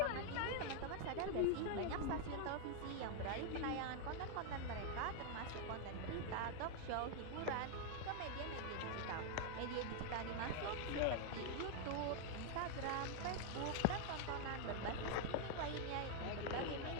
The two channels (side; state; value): both; different; correlation 0.00